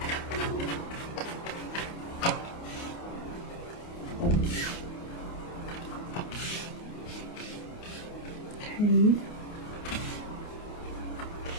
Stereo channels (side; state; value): right; late; 29 ms